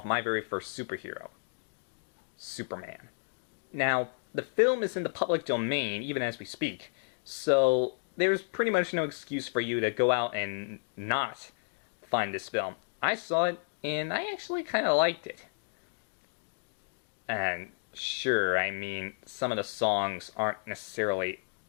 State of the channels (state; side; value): silent; right; digital silence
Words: my very first superhero, Superman. Now, the film is in the public domain even as we speak, so there's pretty much no excuse for you to go out and not find this film. I saw it, and I actually kind of liked it. And sure, I mean, some of the songs aren't necessarily